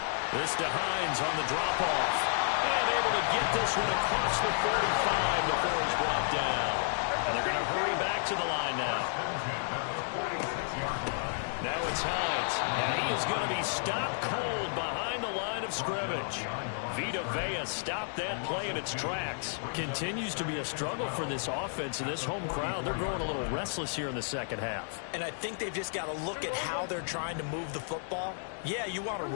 This to Hines on the drop-off. And able to get this one across the 45 before he's brought down. And they're going to hurry back to the line now. Now it's Hines. And he is going to be stopped cold behind the line of scrimmage. Vita Vea stopped that play in its tracks. Continues to be a struggle for this offense and this home crowd. They're growing a little restless here in the second half. And I think they've just got to look at how they're trying to move the football. Yeah, you want to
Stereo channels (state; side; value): silent; right; digital silence